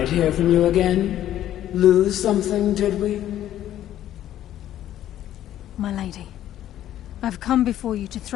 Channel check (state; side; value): quieter; right; 12.1 dB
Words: hear from you again. Lose something, did we? My lady, I've come before you to